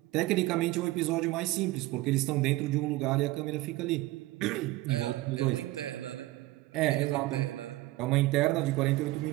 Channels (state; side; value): quieter; left; 18.7 dB